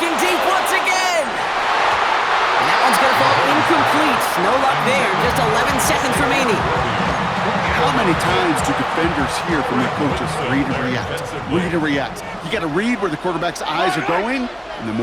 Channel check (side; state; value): both; identical; correlation 1.00